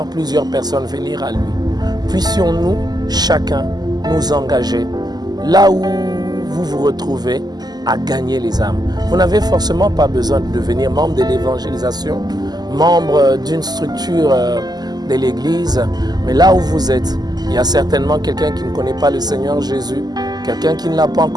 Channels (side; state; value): left; late; 0.20 ms